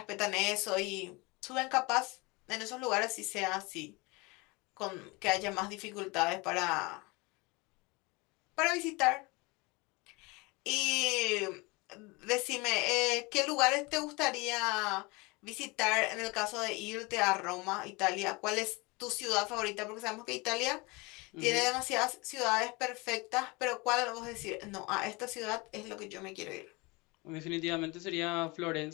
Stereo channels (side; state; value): right; quieter; 25.8 dB